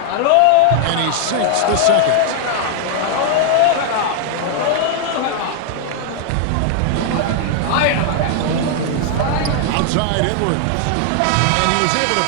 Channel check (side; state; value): both; different; correlation 0.00